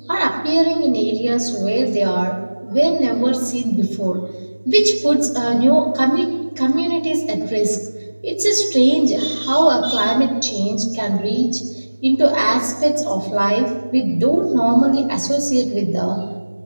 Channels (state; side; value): inverted; both; correlation -1.00